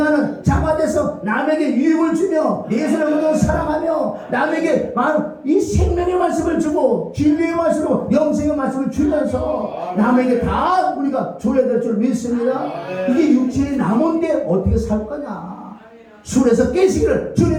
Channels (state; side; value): identical; both; correlation 1.00